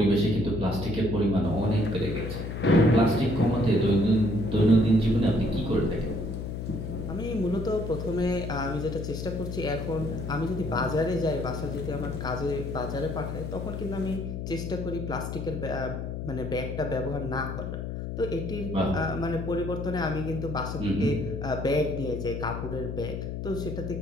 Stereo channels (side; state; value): left; noise; hum, 5 dB below the sound